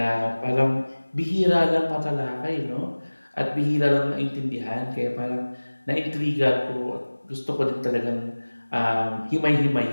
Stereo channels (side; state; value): both; inverted; correlation -1.00